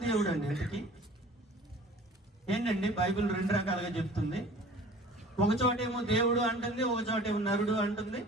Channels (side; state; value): both; normal; correlation 0.46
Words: దేవుడు అండి? ఎందుకు ఏంటండి? బైబిల్ 2 రకాలుగా చెప్తుంది. ఒక చోటేమో దేవుడు అంటుంది, ఒక చోటేమో నరుడు అంటుంది.